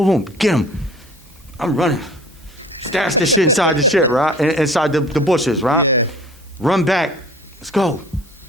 boom, get him. I'm running. Stash this shit inside the shit, right? Inside the bushes, right? Yeah. Run back. Let's go.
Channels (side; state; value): both; normal; correlation 0.47